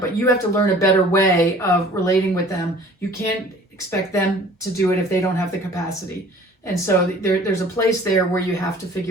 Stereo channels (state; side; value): normal; both; correlation 0.49